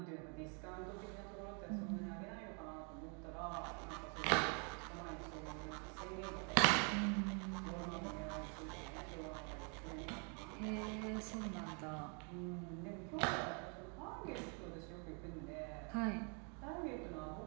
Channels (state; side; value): quieter; left; 36.7 dB